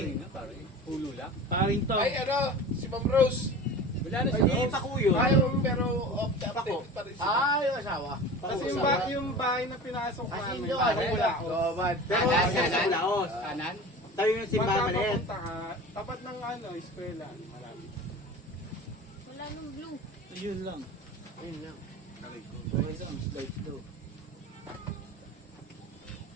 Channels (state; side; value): normal; both; correlation 0.35